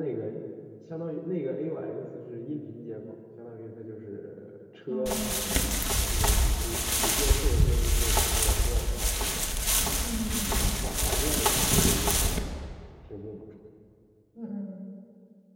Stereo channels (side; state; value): both; identical; correlation 1.00